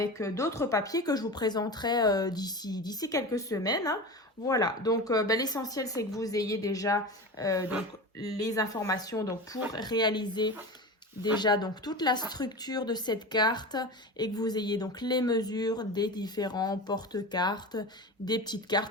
d'autres papiers que je vous présenterai d'ici quelques semaines, hein. Voilà, donc l'essentiel c'est que vous ayez déjà donc, les informations donc, pour réaliser déjà donc toute la structure de cette carte et que vous ayez donc les mesures des différents porte-cartes, des petites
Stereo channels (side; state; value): both; normal; correlation 0.28